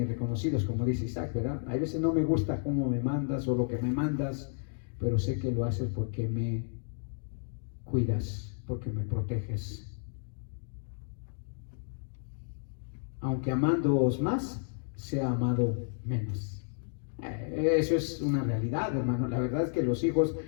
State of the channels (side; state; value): right; silent; digital silence